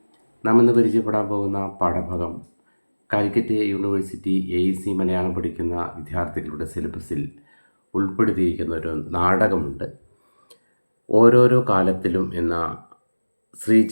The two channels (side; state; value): both; inverted; correlation -1.00